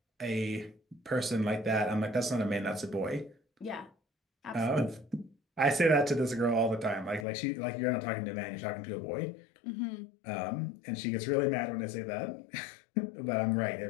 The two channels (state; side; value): drops out; right; at 7.2 s